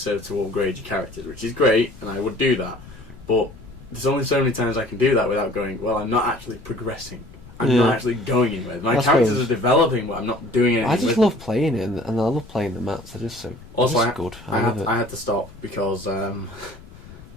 to upgrade your characters, which is great, and I would do that, but there's only so many times I can do that without going, well, I'm not actually progressing. I'm not actually going anywhere. My characters are developing, but I'm not doing anything. I just love playing it, and I love playing the maps. They're just so good. I had to stop because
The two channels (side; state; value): left; noise; rumble, 19 dB below the sound